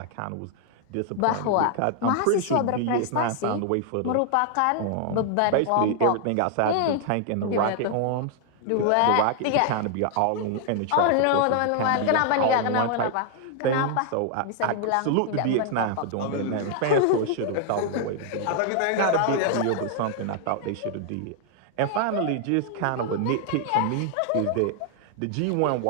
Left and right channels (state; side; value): different; both; correlation 0.00